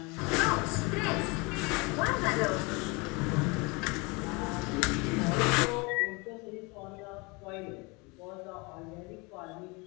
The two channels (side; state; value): right; quieter; 27.7 dB